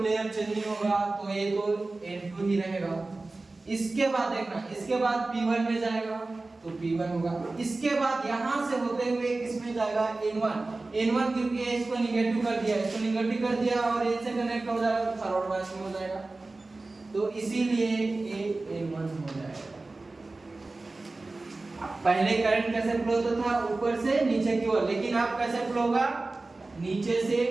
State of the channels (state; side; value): quieter; left; 3.3 dB